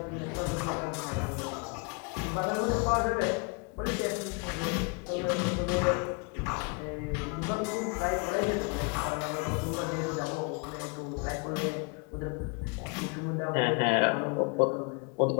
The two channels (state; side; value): quieter; right; 33.2 dB